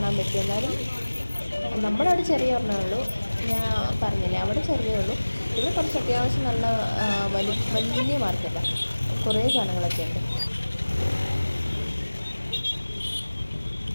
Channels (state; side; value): inverted; both; correlation -1.00